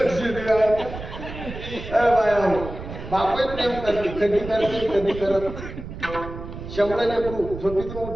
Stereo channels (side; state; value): right; noise; rumble, 10 dB below the sound